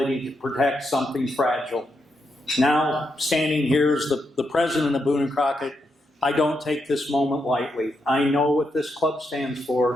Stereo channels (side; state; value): both; normal; correlation 0.83